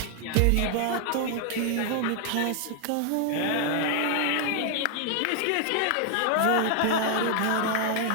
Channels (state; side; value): different; both; correlation 0.00